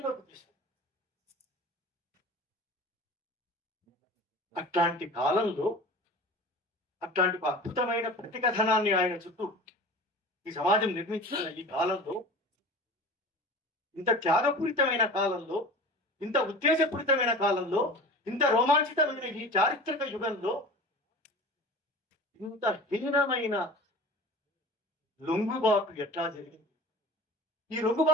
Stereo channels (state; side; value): normal; both; correlation 0.37